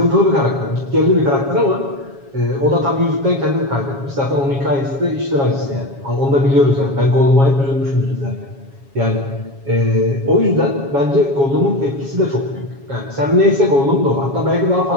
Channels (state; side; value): late; left; 7.3 ms